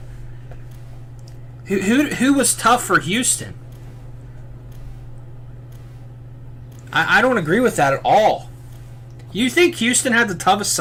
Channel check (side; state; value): both; identical; correlation 1.00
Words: Who was tough for Houston? I don't agree with that at all. You think Houston had the toughest